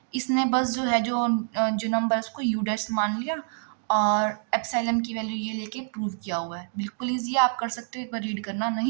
इसने बस जो है जो नंबर है उसको यू डैश मान लिया और एप्सिलॉन की वैल्यू ये लेके प्रूव किया हुआ है। बिल्कुल ईजी, आप कर सकते हो, एक बार रीड करना,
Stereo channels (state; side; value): silent; left; digital silence